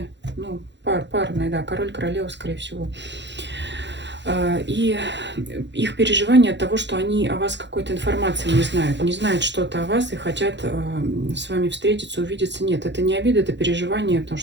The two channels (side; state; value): left; late; 0.52 ms